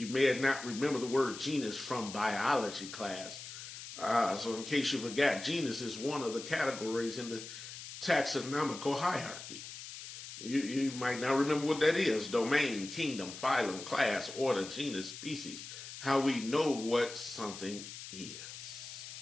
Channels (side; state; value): left; noise; hiss, 11 dB below the sound